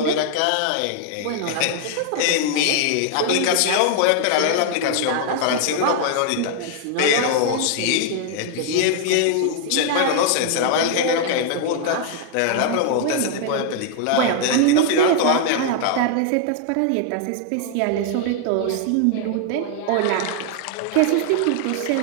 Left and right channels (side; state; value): both; different; correlation 0.00